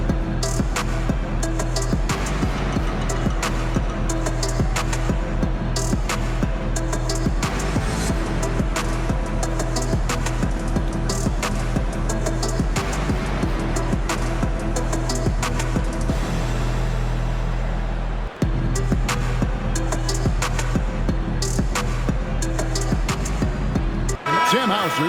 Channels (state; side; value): identical; both; correlation 1.00